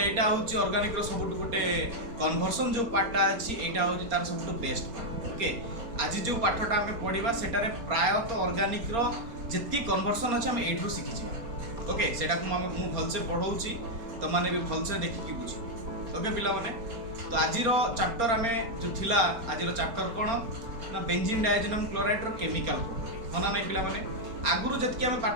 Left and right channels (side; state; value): left; late; 4.3 ms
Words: एटा होची ऑर्गेनिक रो सबटु गोटे कन्वर्सन जो पार्टटा अछि एटा होची तार सबटु बेस्ट पार्ट ओके आज जो पाठटा आम पढ़ा सेटारे प्रायतः ऑर्गेनिक रो जितकी कन्वर्सन अच्छे आम एठू शिखी ओके सेटा को मु भलसे पढ़ाऊँगी तो मैंने भी भलसे देखिकी बुझी ओके पिला माने तो आज चैप्टर आम जो थिला आज चैप्टर कौन ना बेंजीन डायजेनम क्लोराइड रो केमिकल प्रॉपर्टी होना नहीं पिला माने आगुरु जतकी आम